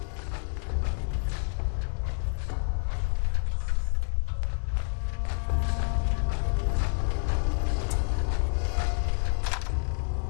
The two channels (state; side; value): silent; right; 59 dB below the other